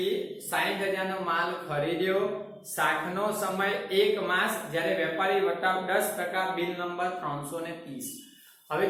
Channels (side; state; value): both; identical; correlation 1.00